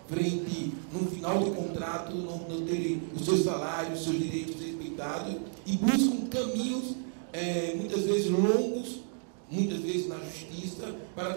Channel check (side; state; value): left; silent; 57 dB below the other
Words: frente, no final de contrato, não terem os seus salários, os seus direitos respeitados, e buscam caminhos, muitas vezes longos, muitas vezes na justiça, para